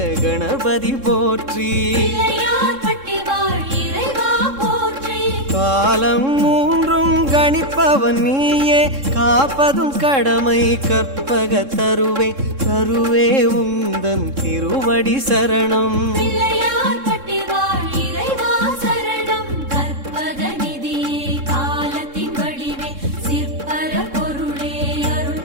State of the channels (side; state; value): left; late; 3.7 ms